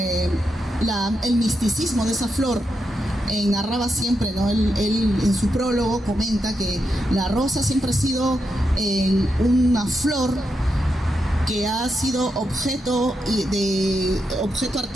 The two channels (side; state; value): both; normal; correlation 0.85